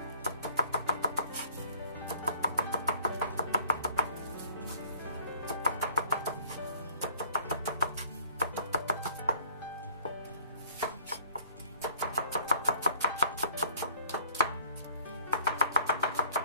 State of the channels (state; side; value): inverted; both; correlation -0.57